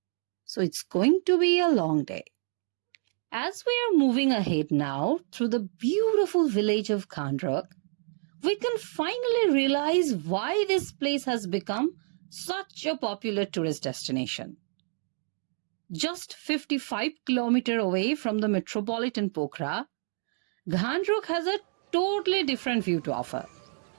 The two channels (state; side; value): silent; left; 58 dB below the other